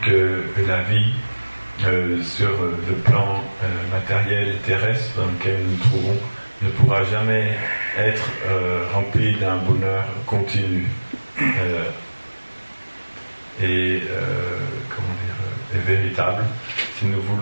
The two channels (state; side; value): inverted; both; correlation -1.00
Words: que la vie sur le plan matériel et terrestre dans lequel nous nous trouvons ne pourra jamais être remplie d'un bonheur continu et véritable. Si nous